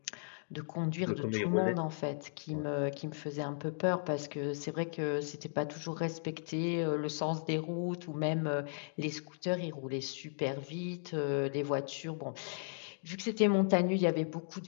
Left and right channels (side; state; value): right; silent; digital silence